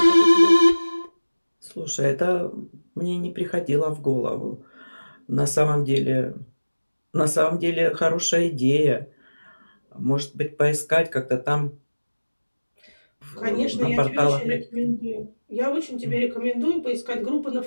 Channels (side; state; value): both; inverted; correlation -1.00